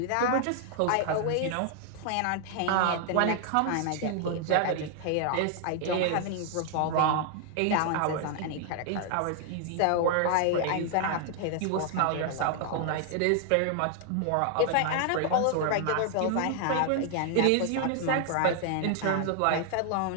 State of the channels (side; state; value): both; different; correlation 0.00